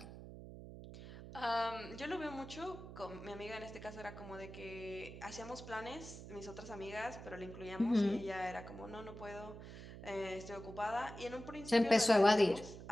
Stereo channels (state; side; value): noise; right; hum, 12 dB below the sound